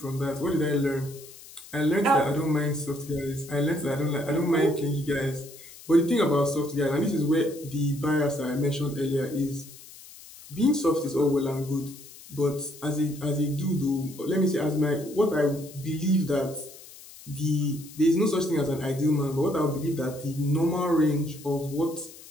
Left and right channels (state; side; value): noise; left; hiss, 18 dB below the sound